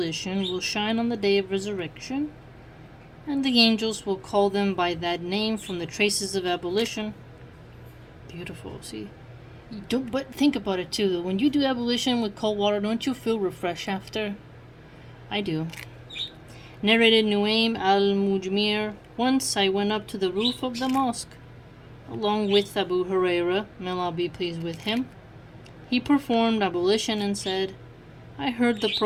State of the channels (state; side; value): identical; both; correlation 1.00